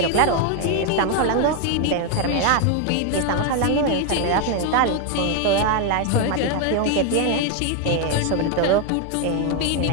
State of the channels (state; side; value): different; both; correlation 0.01